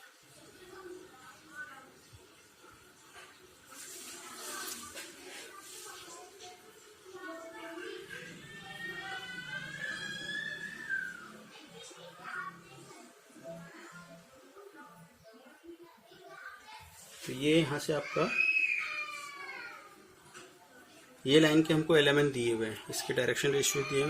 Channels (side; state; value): both; identical; correlation 1.00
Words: तो ये यहाँ से आपका ये लाइन के हमको एलिमेंट दिए हुए हैं, इसके डायरेक्शन रेशियो दिए हुए